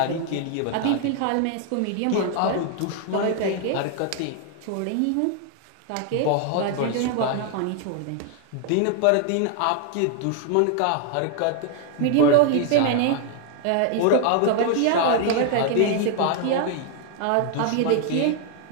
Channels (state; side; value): different; both; correlation 0.00